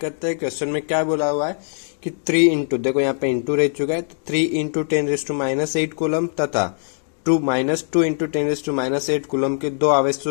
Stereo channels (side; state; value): right; silent; digital silence